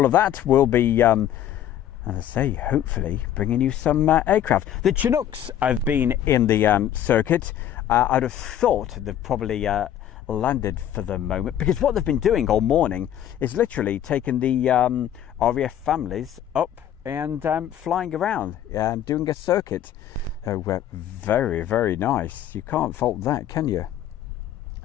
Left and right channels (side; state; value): right; quieter; 10.9 dB